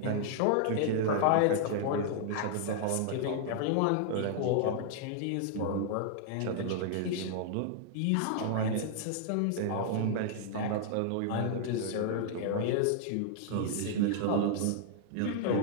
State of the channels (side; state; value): both; different; correlation -0.01